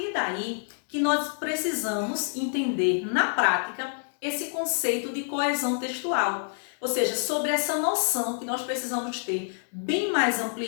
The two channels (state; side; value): silent; right; digital silence